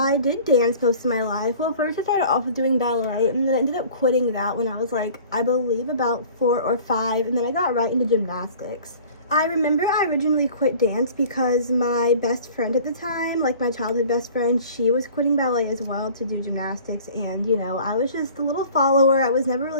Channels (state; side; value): inverted; both; correlation -0.46